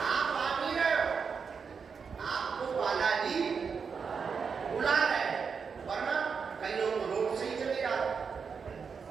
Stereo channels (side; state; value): left; quieter; 5.9 dB